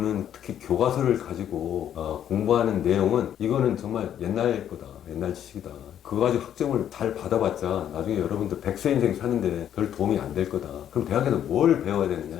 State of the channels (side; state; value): right; quieter; 10.1 dB